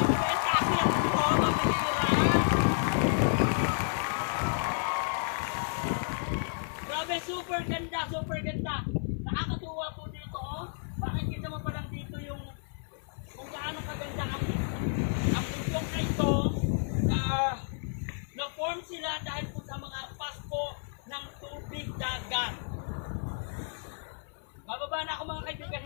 Kasi ang mabihira! Grabe, super ganda, super ganda! Nakakatuwa po dito, oh! Makikita mo pa lang dito yung kung gaano kaganda ang bundok na ito. Na-form sila dahil po sa mga pasko ng tubig dagat. Bababa na ako mga kaibigan,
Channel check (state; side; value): silent; right; 57 dB below the other